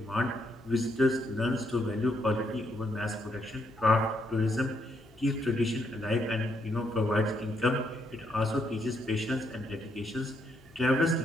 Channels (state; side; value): noise; left; hum, 26 dB below the sound